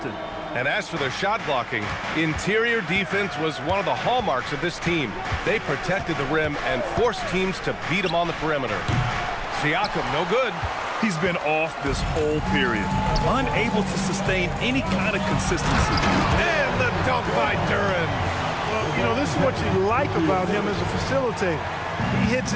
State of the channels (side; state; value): both; identical; correlation 1.00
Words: And as for their shot blocking, interior defense was one of the hallmarks of this team. They protected the rim and forced teams to beat them on the perimeter. Siakam, no good. He's been off this whole period, unable to sustain any kind of consistency. And the dunk by Duren. Well, you know, this is what you like about him as a facilitator. He hits